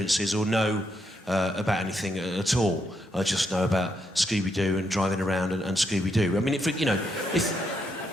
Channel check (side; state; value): both; normal; correlation 0.79